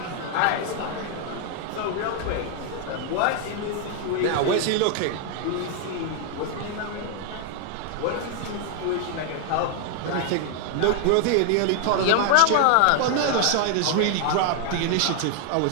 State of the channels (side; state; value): both; different; correlation 0.00